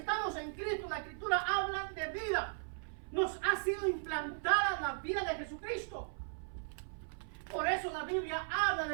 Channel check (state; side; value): silent; left; 53 dB below the other